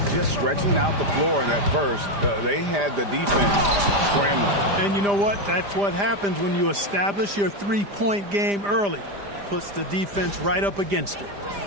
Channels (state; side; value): late; left; 5.0 ms